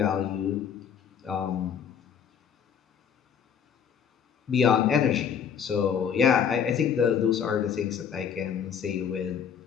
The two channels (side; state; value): right; quieter; 7.8 dB